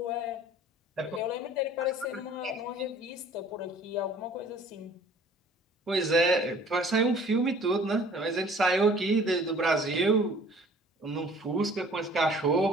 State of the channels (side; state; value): both; normal; correlation 0.52